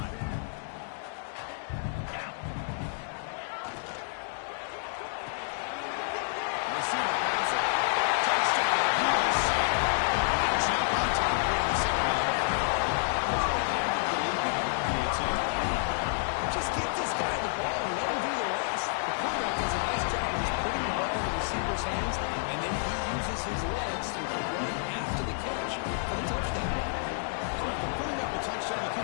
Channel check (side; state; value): right; silent; digital silence